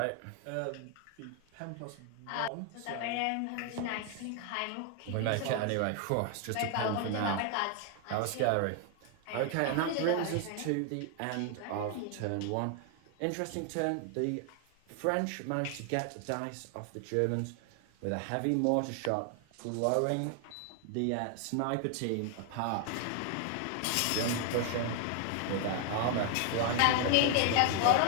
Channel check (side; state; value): both; different; correlation 0.00